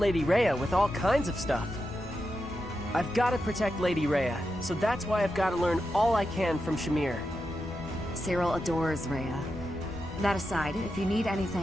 Rhea with all kinds of stuff. I've got to protect Lady Rhea, so that's why I've got to learn all I can from Shamir. Cyril adores Rhea. That aside, if you need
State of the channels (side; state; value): left; noise; rumble, 16 dB below the sound